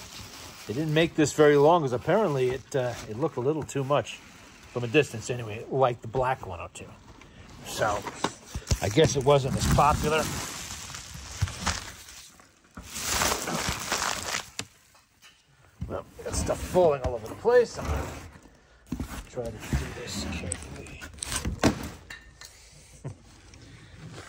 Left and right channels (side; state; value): both; identical; correlation 1.00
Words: They didn't make this very long because apparently it looked a little too much from a distance anyway, like the black 102. So I guess it wasn't as popular. Well, got stuff falling all over the place. I'm going to try to do this carefully.